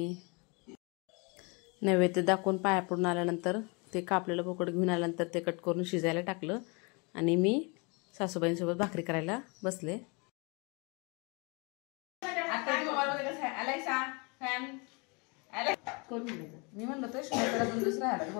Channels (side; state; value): right; quieter; 30.7 dB